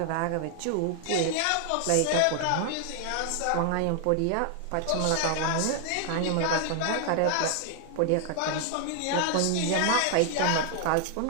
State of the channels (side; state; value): both; different; correlation 0.00